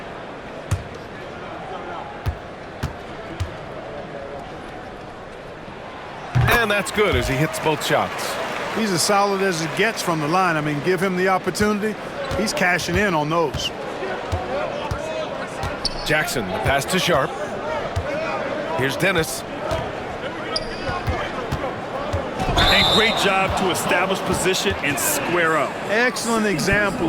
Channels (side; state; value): both; identical; correlation 1.00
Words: And that's good as he hits both shots. He's as solid as it gets from the line. I mean, give him the opportunity. He's cashing in on those. Jackson, the pass to Sharp. Here's Dennis. And great job to establish position and square up. Excellent